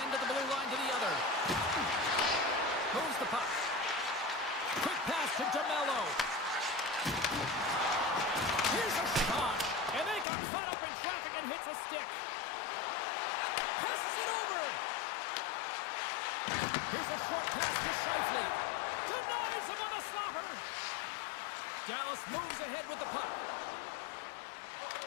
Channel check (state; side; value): drops out; right; at 10.2 s